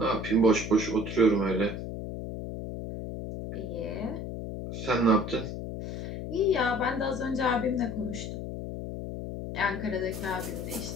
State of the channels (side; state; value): left; noise; hum, 6 dB below the sound